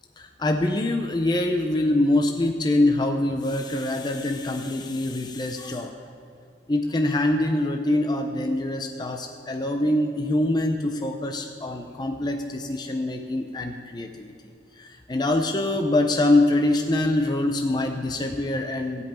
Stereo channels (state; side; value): normal; both; correlation 0.76